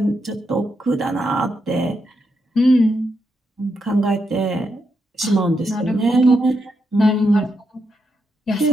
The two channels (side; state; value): both; normal; correlation 0.82